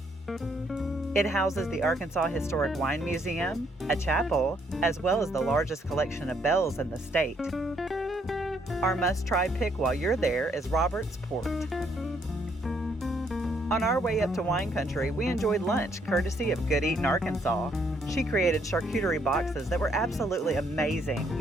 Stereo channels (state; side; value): normal; both; correlation 0.70